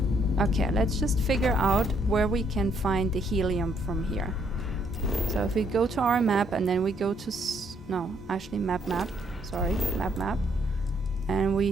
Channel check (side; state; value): both; normal; correlation 0.70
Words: Okay, let's just figure out where we can find the helium from here. So if we go to our map and then we go to no, actually map, sorry, map, and